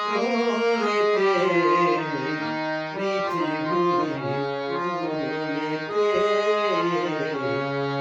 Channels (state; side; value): identical; both; correlation 1.00